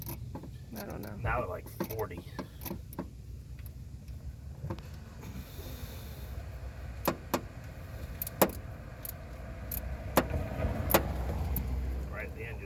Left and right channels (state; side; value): identical; both; correlation 1.00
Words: I don't know. Now they're like 40. Right at the end